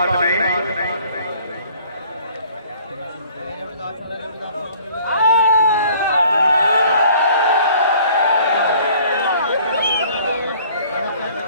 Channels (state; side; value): inverted; both; correlation -0.54